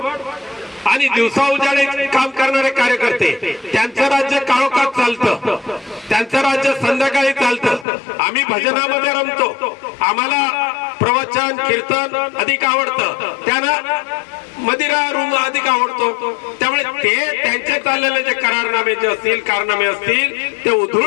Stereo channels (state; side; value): drops out; right; at 7.9 s